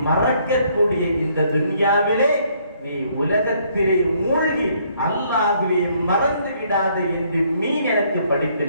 மறக்கக்கூடிய இந்த துன்யாவிலே நீ உலகத்திலே மூழ்கி அல்லாஹ்வை மறந்து விடாத என்று மீன் எனக்கு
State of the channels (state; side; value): inverted; both; correlation -0.67